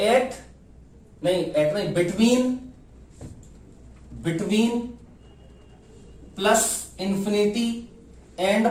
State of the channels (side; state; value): both; identical; correlation 1.00